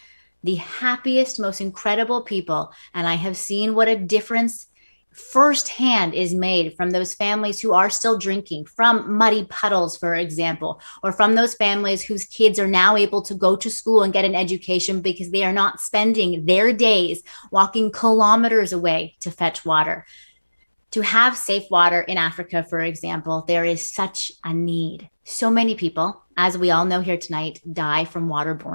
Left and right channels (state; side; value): inverted; both; correlation -1.00